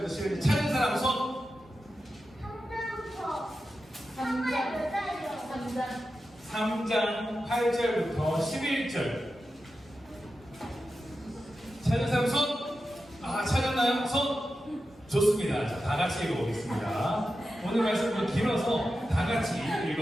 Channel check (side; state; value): both; normal; correlation 0.91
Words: 11절. 찾은 사람 손. 3장 8절부터 11절. 찾은 사람 손. 아, 찾았나요? 손. 좋습니다. 자, 다 같이 읽어보겠습니다. 오늘 말씀은 길어서 다 같이